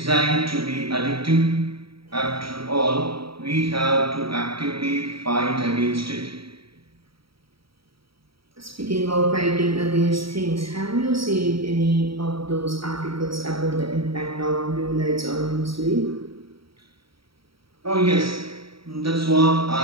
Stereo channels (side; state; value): left; late; 0.75 ms